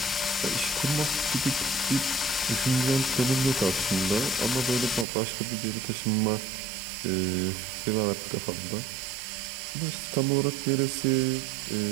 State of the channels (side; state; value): left; drops out; at 5.1 s